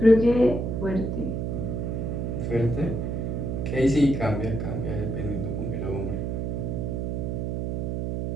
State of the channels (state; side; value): noise; right; hum, 1 dB below the sound